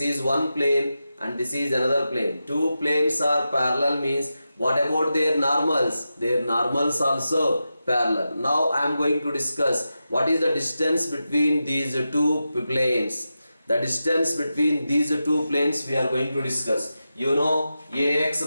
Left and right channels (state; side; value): inverted; both; correlation -0.91